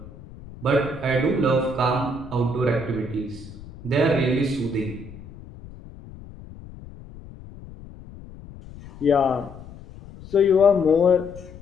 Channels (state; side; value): noise; left; rumble, 17 dB below the sound